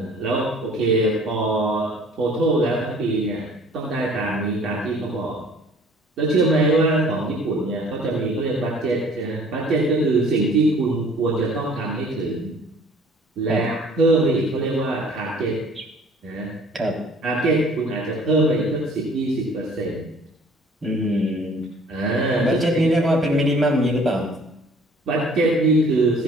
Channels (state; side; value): normal; both; correlation 0.52